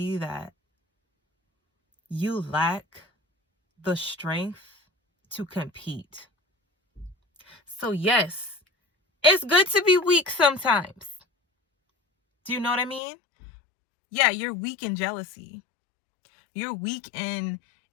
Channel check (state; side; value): drops out; right; at 13.0 s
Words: that you lack the strength to compete. So yes, it's good to be weak sometimes. Do you know what I mean? Yeah, you're weak in jealousy. You're weak in